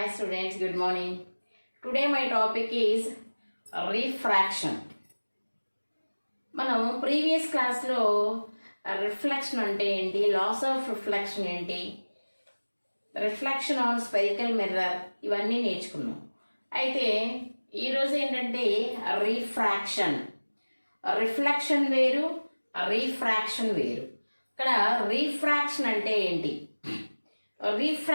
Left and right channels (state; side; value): inverted; both; correlation -1.00